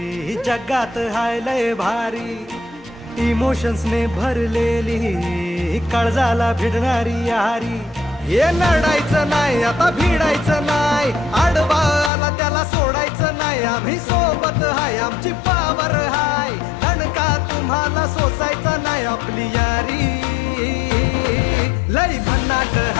जगात हाय लय भारी, इमोशन्स ने भरलेली काळजाला भिडणारी यारी। हे लढायचं नाही आता भिडायचं नाही, आडवा आला त्याला सोडायचं नाही, आम्ही सोबत हाय आमची पावर हाय, दणका तुम्हाला सोसायचा नाही। आपली यारी लय भन्नाट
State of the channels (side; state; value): right; drops out; at 12.1 s